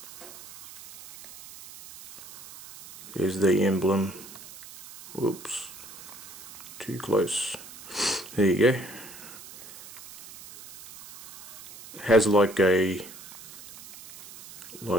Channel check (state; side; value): noise; right; hiss, 16 dB below the sound